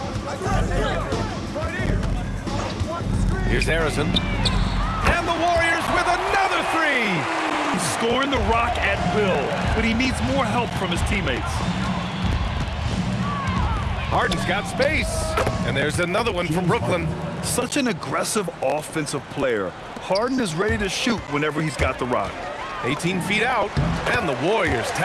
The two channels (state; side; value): identical; both; correlation 1.00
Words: Here's Harrison. And the Warriors with another 3. He's scoring the rock at will, but he needs more help from his teammates. Harden's got space. And there's another one from Brooklyn. Such an aggressive offensive player. Harden is ready to shoot whenever he's got the rock. 18 feet out, and the Warriors